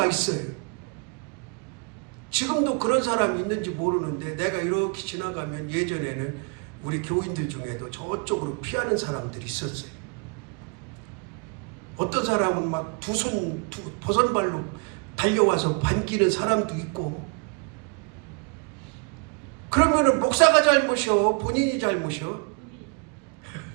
있어요. 지금도 그런 사람이 있는지 모르는데, 내가 이렇게 지나가면 예전에는 우리 교인들 중에도 저쪽으로 피하는 사람들이 있었어요. 어떤 사람은 막 버선발로 달려와서 반기는 사람도 있고. 그러면은 목사가 잘못이요? 본인이 잘못이요?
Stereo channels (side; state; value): left; quieter; 34.7 dB